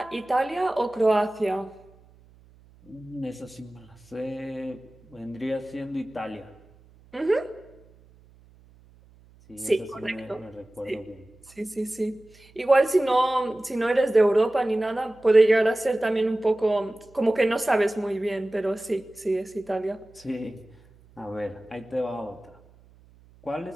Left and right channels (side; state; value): right; noise; hum, 27 dB below the sound